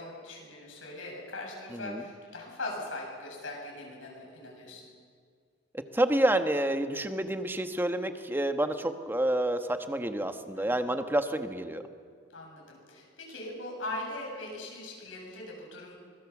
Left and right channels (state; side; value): normal; both; correlation 0.71